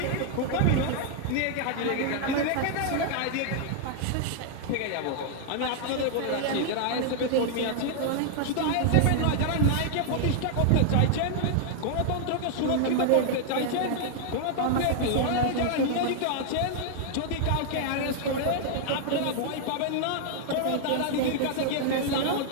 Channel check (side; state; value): both; different; correlation 0.00